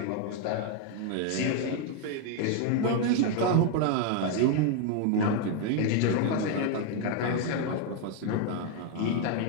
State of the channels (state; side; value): different; both; correlation 0.01